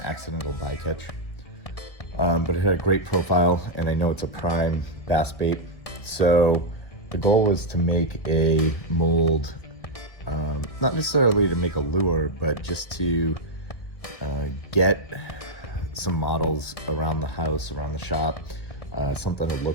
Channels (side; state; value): right; late; 1.6 ms